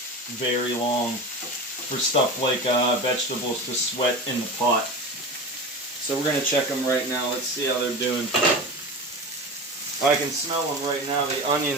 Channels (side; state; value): both; normal; correlation 0.28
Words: very long for stuff like vegetables to sweat in the pot. So we're going to check them right now. Let's see how they're doing. I can smell them right now. The